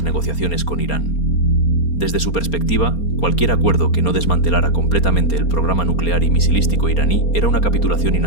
negociaciones con Irán. Desde su perspectiva, cualquier acuerdo que no desmantelara completamente el programa nuclear y misilístico iraní era una capitulación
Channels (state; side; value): late; right; 4.3 ms